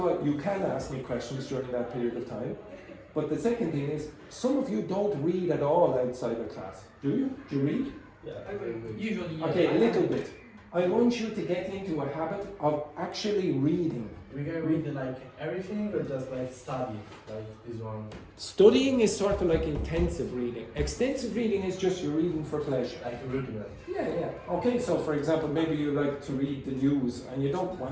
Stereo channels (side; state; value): both; identical; correlation 1.00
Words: all, you can ask me questions during that period of time. But the second thing is, some of you don't read at all outside of class. Do you? Do you read? Yeah, Usually, yeah. Okay, a little bit. I want you to get into a habit of actually reading. We can read like everything or just like study, like this one? Studying is sort of like intensive reading. Extensive reading is just you're reading for pleasure. Like reading it. Yeah. Okay, so for example, maybe you like to read the news and you don't